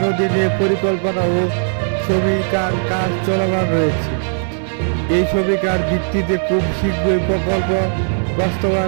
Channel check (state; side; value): silent; left; 61 dB below the other